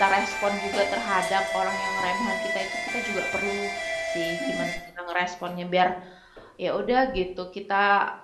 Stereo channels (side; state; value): both; identical; correlation 1.00